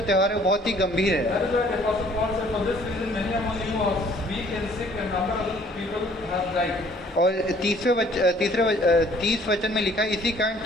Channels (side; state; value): both; normal; correlation 0.58